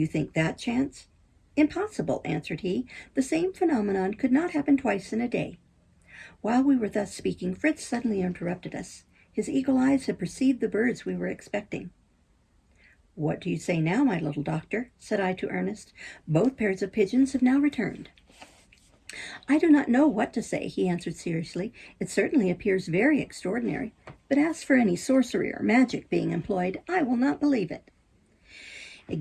think that chance?" "Impossible," answered he. "The same phenomenon could not happen twice in a day." While we were thus speaking, Fritz suddenly interrupted us. His eagle eyes had perceived the birds we were expecting. "What do you say now, my little doctor?" said I to Ernest. "Both pairs of pigeons have now returned." "I do not know what to say," he answered seriously. "It certainly appears very extraordinary, but as for any sorcery or magic being employed, I will not believe it." "It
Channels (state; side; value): identical; both; correlation 1.00